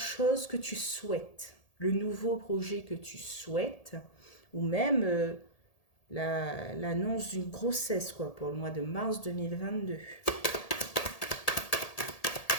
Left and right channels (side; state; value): right; late; 1.8 ms